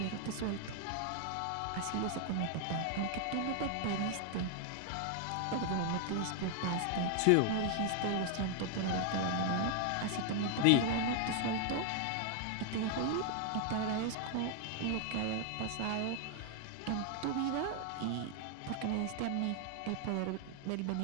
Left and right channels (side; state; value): both; different; correlation 0.00